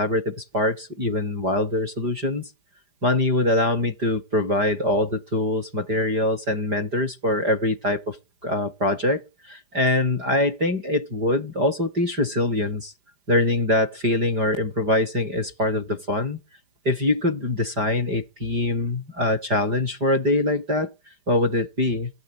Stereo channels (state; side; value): late; left; 5.0 ms